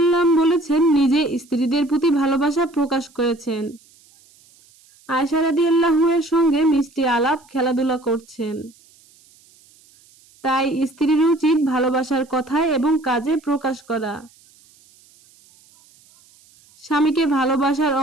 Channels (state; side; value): noise; right; hiss, 29 dB below the sound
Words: বলেছেন, নিজে স্ত্রীদের প্রতি ভালোবাসা প্রকাশ করেছেন। আয়েশা রাদিয়াল্লাহু এর সঙ্গে মিষ্টি আলাপ, খেলাধুলা করছেন। তাই স্ত্রীর উচিত ভালোবাসার কথায় এবং কাজে প্রকাশ করা। স্বামীকে ভালোবাসার